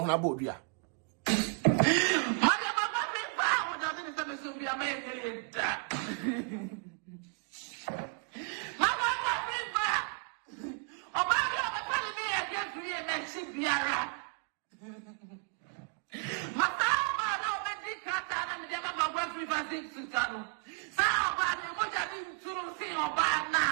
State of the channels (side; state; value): left; quieter; 36.5 dB